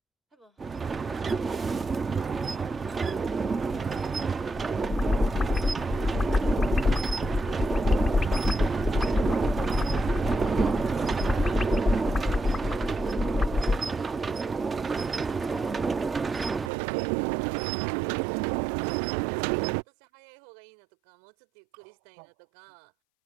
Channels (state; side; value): drops out; left; at 16.7 s